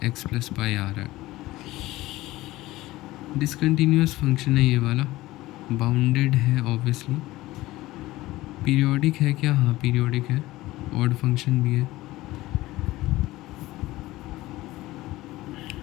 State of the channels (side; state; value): right; quieter; 17.8 dB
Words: x + π आ रहा है। डिसकंटिन्यूअस फंक्शन है ये वाला, बाउंडेड है ऑब्वियसली। पीरियोडिक है क्या? हाँ पीरियोडिक है, ऑड फंक्शन भी है।